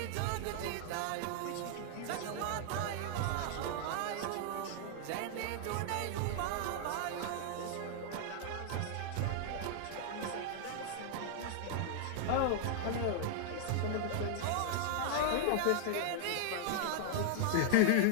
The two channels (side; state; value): both; different; correlation -0.01